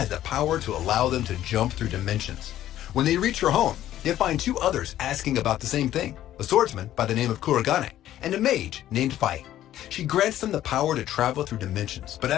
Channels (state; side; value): quieter; right; 12.7 dB